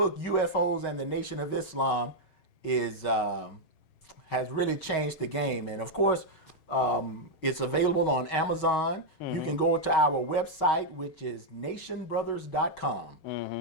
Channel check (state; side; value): late; right; 6.3 ms